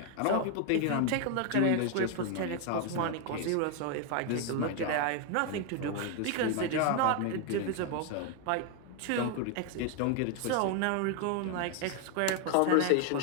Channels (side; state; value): both; different; correlation 0.01